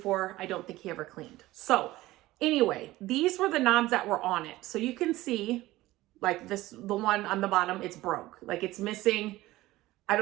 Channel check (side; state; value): left; quieter; 17.4 dB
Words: I don't think he ever cleaned. So anyway, these were the knobs that were on it. So you can see like the one on the bottom, it's broke. Like it's missing. I